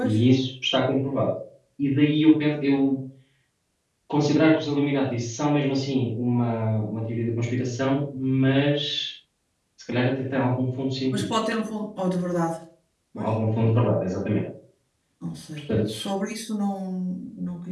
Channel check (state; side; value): identical; both; correlation 1.00